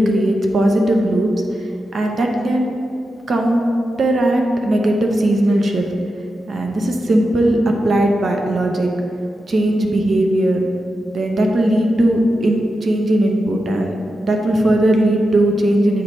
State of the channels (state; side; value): normal; both; correlation 0.89